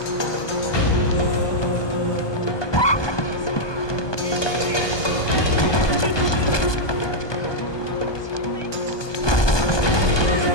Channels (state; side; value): late; right; 1.2 ms